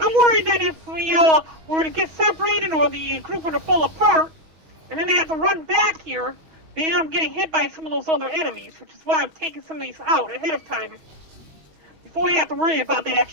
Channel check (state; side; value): late; left; 21 ms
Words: worried that if we were to get separated or the group were to fall apart, and then they have to run back here, they end up getting hit by some of those other enemies, which is why I'm taking some of these out ahead of time, before we have to worry about that